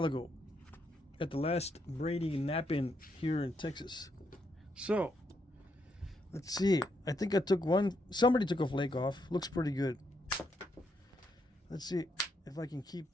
ago at the last Brady Knapping here in Texas. So let's see. I think I took one. Somebody took a flake off. Looks pretty good. Let's see if I can keep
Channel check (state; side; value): normal; both; correlation 0.78